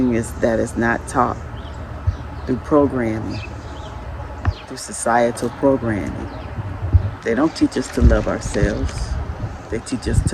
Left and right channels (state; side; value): identical; both; correlation 1.00